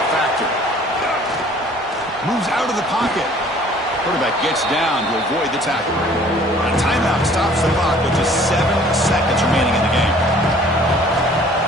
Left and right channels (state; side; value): normal; both; correlation 0.54